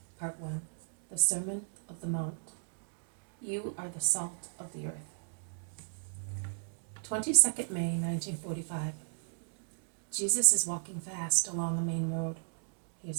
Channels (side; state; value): left; silent; digital silence